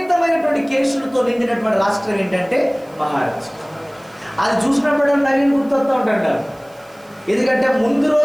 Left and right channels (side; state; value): right; noise; hiss, 29 dB below the sound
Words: కేసులతో నిండినటువంటి రాష్ట్రం ఏంటంటే మహారాష్ట్ర. అది చూసినప్పుడు నవీన్ గుర్తొస్తూ ఉంటాడు. ఎందుకంటే ముందు